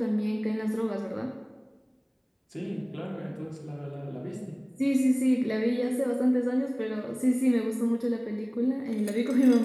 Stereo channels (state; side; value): identical; both; correlation 1.00